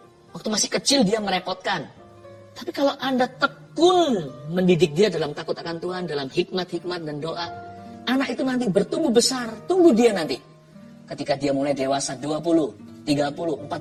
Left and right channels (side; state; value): both; identical; correlation 1.00